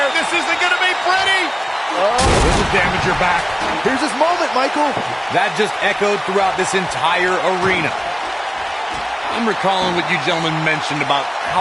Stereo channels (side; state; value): both; identical; correlation 1.00